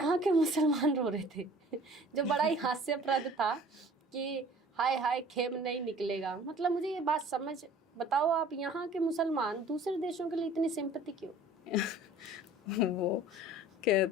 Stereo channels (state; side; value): normal; both; correlation 0.48